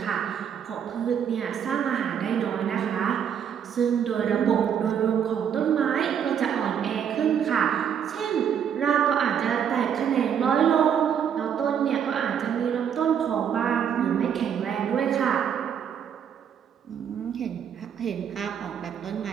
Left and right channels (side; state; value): left; quieter; 8.3 dB